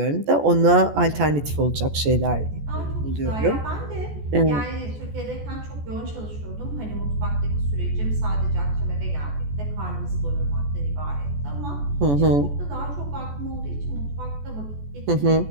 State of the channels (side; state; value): left; late; 14 ms